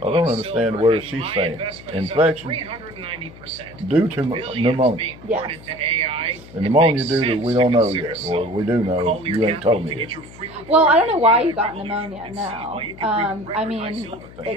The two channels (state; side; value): noise; left; hum, 19 dB below the sound